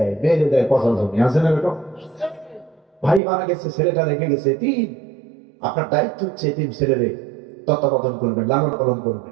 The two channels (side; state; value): left; drops out; at 3.2 s